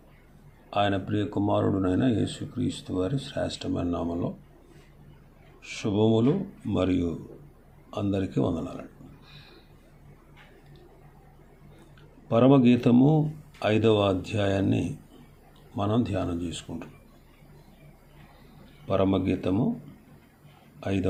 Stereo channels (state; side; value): identical; both; correlation 1.00